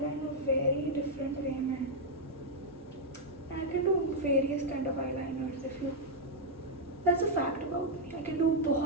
very different way, man. I can do various kind of eyeliners if you. That's a fact about me. I can do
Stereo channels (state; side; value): normal; both; correlation -0.03